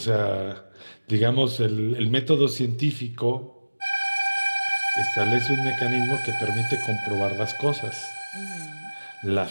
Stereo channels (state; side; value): inverted; both; correlation -1.00